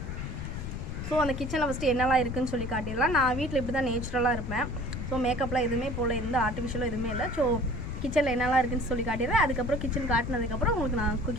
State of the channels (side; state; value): left; noise; rumble, 6 dB below the sound